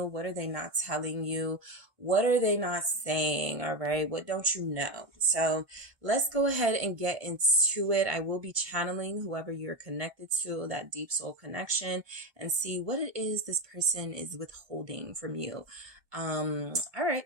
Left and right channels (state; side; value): late; left; 1.1 ms